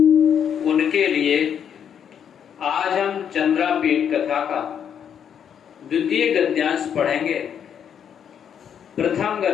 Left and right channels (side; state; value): right; quieter; 8.4 dB